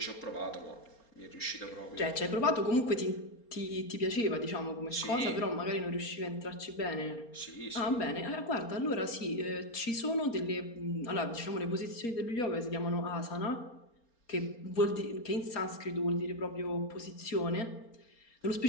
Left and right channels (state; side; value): late; right; 4.3 ms